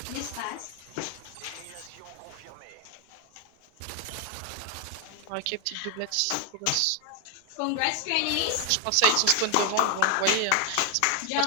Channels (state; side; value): different; both; correlation 0.01